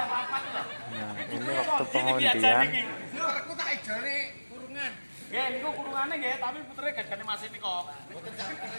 Nah, ini waktu pengundian. Aku tak ijone kurungan. Nggih, niku kurungane nggih, tapi putere gajane Mas niko. Mboten sampe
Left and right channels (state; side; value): inverted; both; correlation -1.00